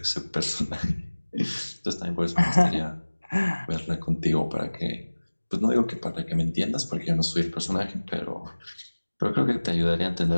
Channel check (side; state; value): both; inverted; correlation -1.00